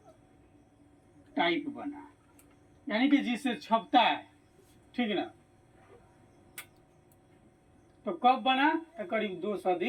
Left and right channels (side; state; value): both; identical; correlation 1.00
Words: टाइप बना, यानी कि जिससे छपता है। ठीक ना? तो कब बना? तो करीब 2